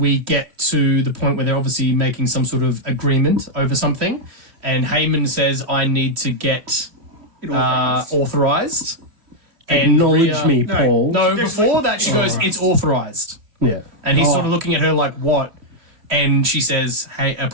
get to the point where they're obviously making some sort of agreement over something. And Heyman says, I need to get authorized. And Acknowledge Rhea- me, Paul. No, before that she goes, it's authorized. Yeah. And he's sort of looking at her like, what? And she says, hey,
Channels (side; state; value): left; late; 2.9 ms